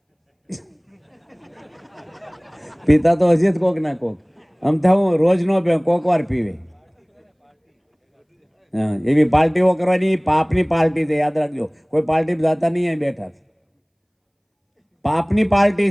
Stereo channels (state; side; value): identical; both; correlation 1.00